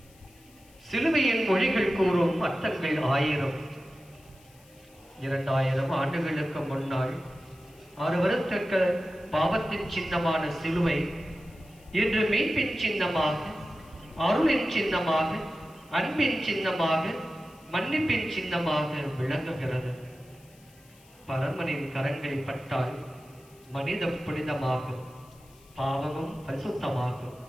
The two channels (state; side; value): noise; left; hiss, 28 dB below the sound